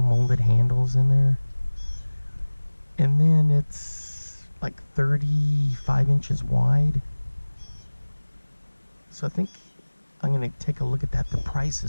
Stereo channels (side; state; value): both; inverted; correlation -1.00